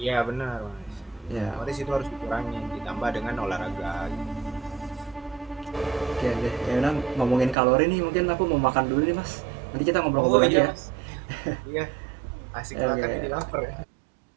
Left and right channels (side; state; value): left; drops out; at 7.6 s